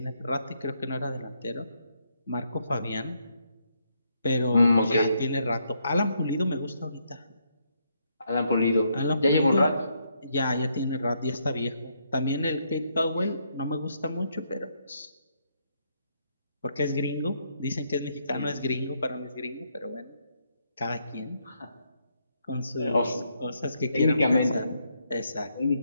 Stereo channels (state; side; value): inverted; both; correlation -0.75